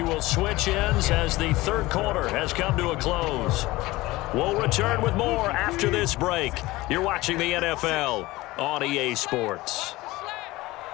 will switch ends as the third quarter has come to a close. We'll return with more after this break. You're watching the NFL on EA Sports.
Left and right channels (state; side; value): quieter; right; 19.5 dB